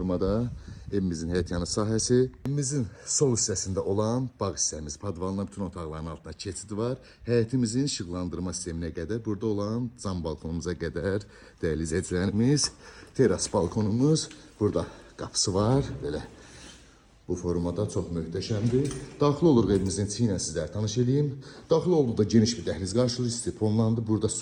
evimizin həyətyanı sahəsi. Evimizin sol hissəsində olan bağ hissəmiz, padvalına bütün otaqların altında keçid var. Həyətimizin işıqlandırma sisteminə qədər, burada olan cam balkonumuza qədər dəyərli izləyicilərimiz, teras balkonumuz, burada qapısı var, belə bu formada çox möhtəşəmdir. Daxil oluruq evimizin içi ilə sizlərə tanış edeyim. Daxil olduqda geniş bir dəhliz qarşılayır, istifonlandı. Burada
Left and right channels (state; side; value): identical; both; correlation 1.00